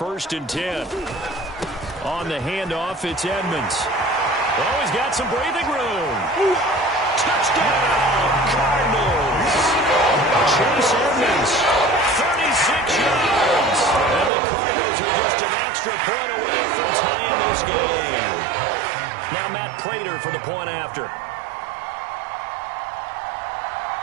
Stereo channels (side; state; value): left; drops out; at 14.3 s